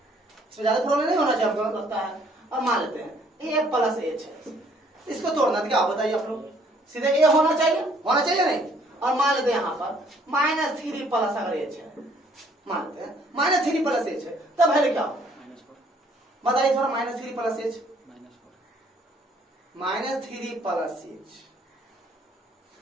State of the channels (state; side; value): normal; both; correlation 0.63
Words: इसमें ज्यादा प्रॉब्लम नहीं होना चाहिए आपको लगता है। और मान लेते हैं a प्लस h है, इसको तोड़ना क्या बताइए आप लोग, सीधे a होना चाहिए नहीं। और मान लेते हैं यहाँ पर -3 प्लस अगर h है, मान लेते हैं -3 प्लस h है, तब वैल्यू क्या होगा बताइए थोड़ा। -3 plus h, -3 plus h,